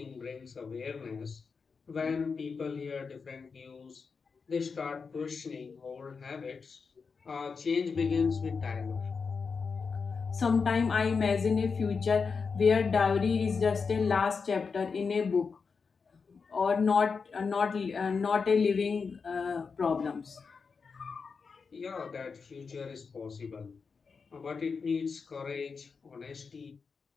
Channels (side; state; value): right; quieter; 5.2 dB